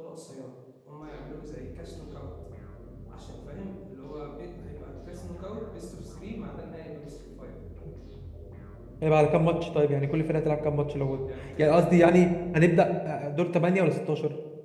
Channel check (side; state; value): both; identical; correlation 1.00